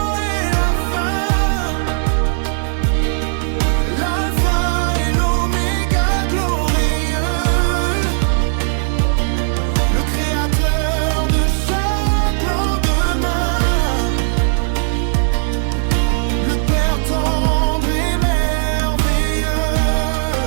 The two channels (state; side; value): silent; left; 56 dB below the other